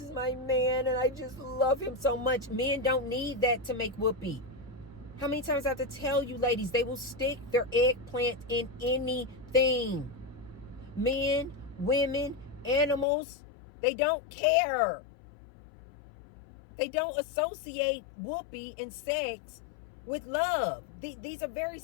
my man, and I just love him so much. Men don't need that to make whoopee. How many times I have to tell you, ladies, they will stick their eggplant in anything. Men, women, animals, they don't care. They don't associate whoopee and sex with love. These are very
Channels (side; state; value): right; drops out; at 13.1 s